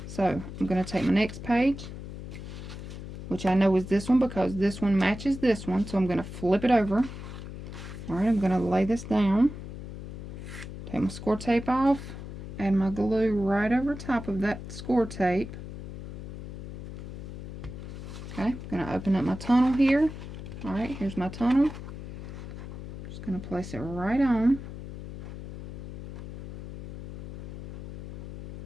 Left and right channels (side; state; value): left; noise; hum, 10 dB below the sound